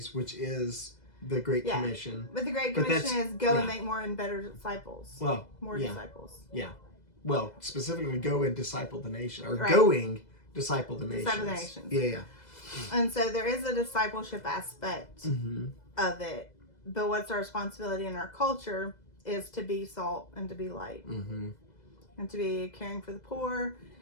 which is the Great Commission. But the Great Commission is go and make more and better disciples. Well, more disciples. Yeah. Well, specifically go and disciple the nation, or going disciple the nations. Disciple the nations. Yeah. And so there is a discipleship aspect of it, but what's our responsibility in our culture is to be salt and to be light, and to be caring for the poor,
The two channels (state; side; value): late; right; 2.0 ms